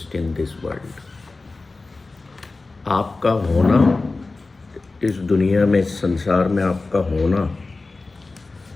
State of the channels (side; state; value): right; quieter; 3.5 dB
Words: in this world. आपका होना इस दुनिया में, इस संसार में आपका होना